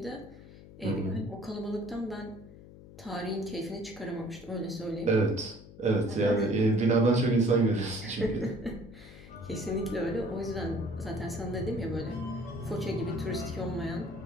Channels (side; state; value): left; noise; hum, 18 dB below the sound